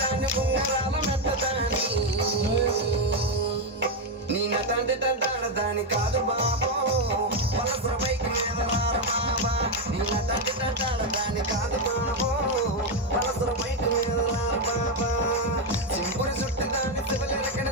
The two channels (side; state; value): both; normal; correlation 0.06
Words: ఉంగరాల మెత్తదాని నీ నటంటి తంటాడదాని కాదు బాబో పలసర బైక్ మీద రార బాబా నీ నటంటి తంటాడదాని కాదు బాబో పలసర బైక్ మీద రార బాబా సింపురి చుట్టదాని శివలెరకన